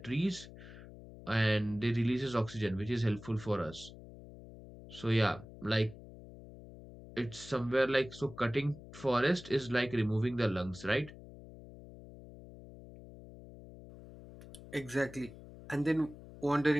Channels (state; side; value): noise; left; hum, 17 dB below the sound